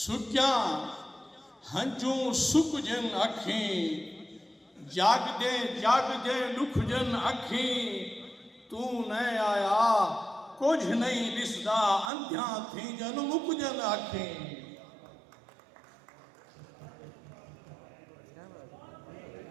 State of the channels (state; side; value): drops out; left; at 12.1 s